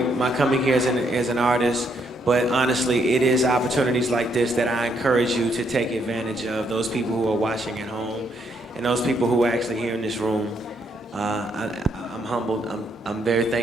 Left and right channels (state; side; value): normal; both; correlation 0.74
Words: coming here as an artist, but honestly, it is opportunities like this that I encourage you to take advantage of, those people who are watching at home, and those people who are actually here in this room. I'm humbled, I'm very